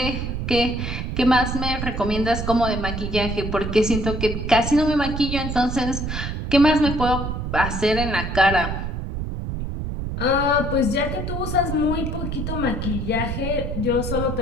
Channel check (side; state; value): right; noise; rumble, 4 dB below the sound